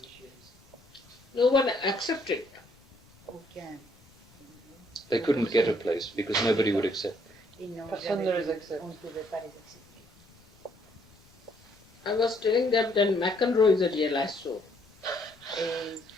No one accepted. Aucun. They couldn't get a place because nobody would accept. Personne ne les accepte. On ne pouvait pas les accepter. I was telling them that McEnroe is a realized soul. Et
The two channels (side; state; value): left; noise; rumble, 29 dB below the sound